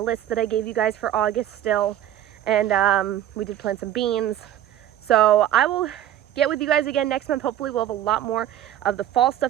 that I gave you guys for August still. And we did plant some beans. So I will get with you guys again next month. Hopefully we'll have a lot more of the fall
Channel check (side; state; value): left; quieter; 11.7 dB